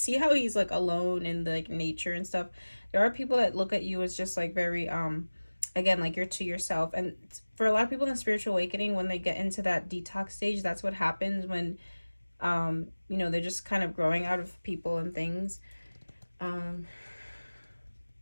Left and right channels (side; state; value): both; inverted; correlation -1.00